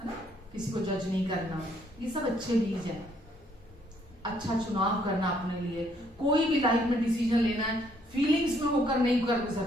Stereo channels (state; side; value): normal; both; correlation 0.67